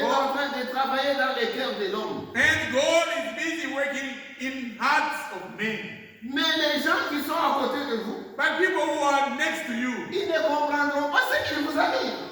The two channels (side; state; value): both; identical; correlation 1.00